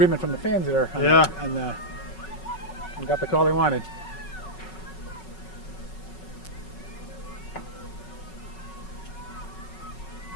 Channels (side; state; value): right; late; 5.4 ms